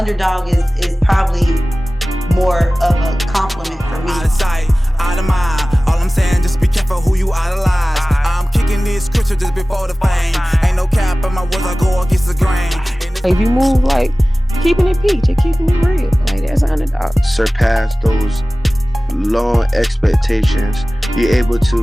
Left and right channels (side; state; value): both; normal; correlation 0.97